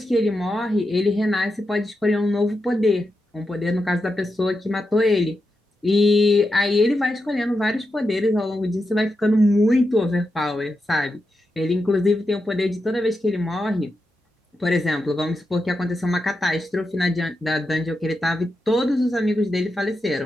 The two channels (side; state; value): both; normal; correlation 0.88